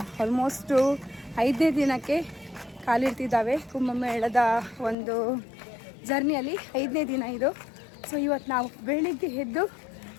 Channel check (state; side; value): drops out; right; at 5.0 s